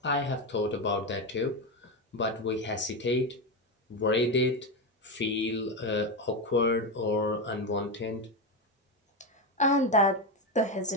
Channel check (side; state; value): both; normal; correlation 0.12